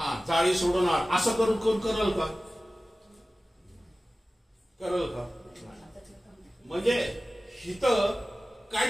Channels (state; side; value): normal; both; correlation 0.96